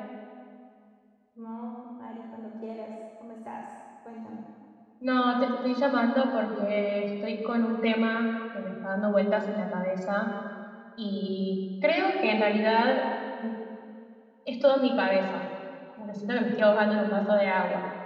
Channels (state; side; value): identical; both; correlation 1.00